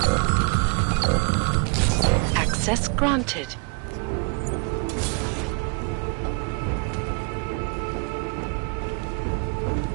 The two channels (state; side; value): quieter; left; 33.8 dB